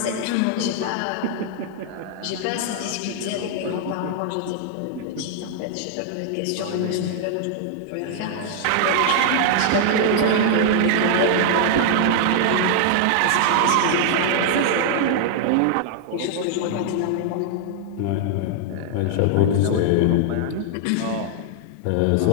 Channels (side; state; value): both; different; correlation -0.01